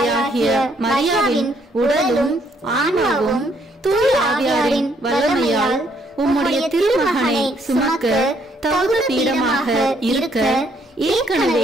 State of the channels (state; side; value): normal; both; correlation 0.69